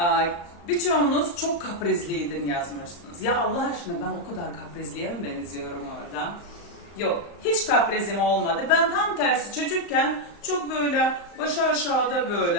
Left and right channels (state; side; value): late; right; 35 ms